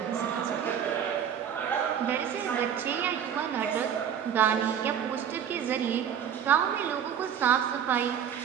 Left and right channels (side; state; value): left; quieter; 8.7 dB